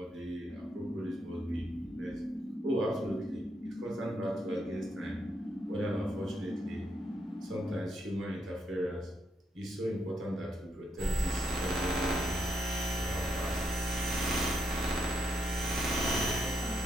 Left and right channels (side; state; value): both; normal; correlation 0.78